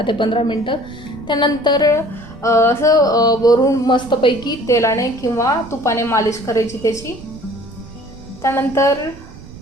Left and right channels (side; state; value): right; noise; rumble, 18 dB below the sound